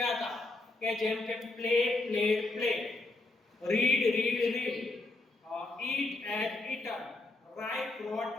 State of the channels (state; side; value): quieter; right; 3.0 dB